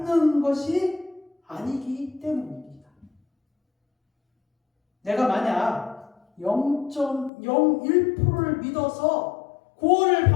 것이 아니기 때문입니다. 내가 만약 0.01%를 믿어서 구원을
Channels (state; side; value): drops out; right; at 7.3 s